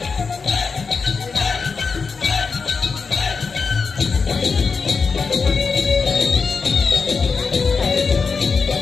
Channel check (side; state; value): right; quieter; 5.0 dB